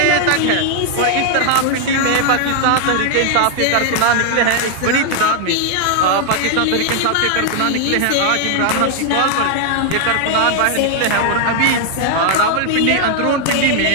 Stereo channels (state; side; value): different; both; correlation 0.00